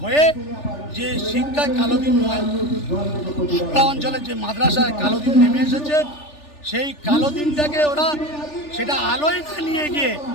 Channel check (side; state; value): right; late; 3.4 ms